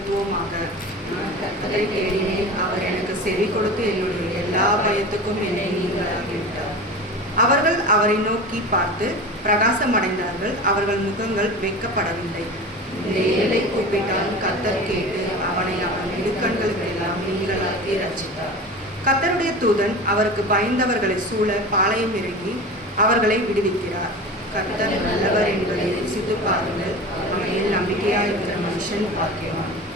நான் கர்த்தரை தேடினேன். அவர் எனக்கு செவி கொடுத்து என்னுடைய எல்லா பயத்துக்கும் என்னை நீங்களாகிவிட்டார். அவர்கள் அவரை நோக்கி பார்த்து பிரகாசமடைந்தார்கள். அவர்கள் முகங்கள் வெட்கப்படவில்லை. இந்த ஏழை கூப்பிட்டால் கர்த்தர் கேட்டு அவனை அவன் இடுக்கண்களுக்கெல்லாம் நீங்களாக்கி ரட்சித்தார். கர்த்தருடைய தூதன் அவருக்கு பயந்தவர்களை சூழ பாளையம் இறங்கி அவர்களை விடுவிக்கிறார். கர்த்தர் நல்லவர் என்பதை ருசித்து பாருங்கள். அவனில் நம்பிக்கையாக இருக்கிற மனுஷன் பாக்கியவான்.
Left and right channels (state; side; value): normal; both; correlation 0.32